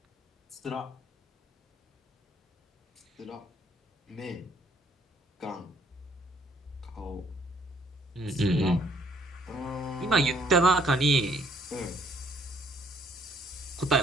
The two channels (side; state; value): both; normal; correlation 0.65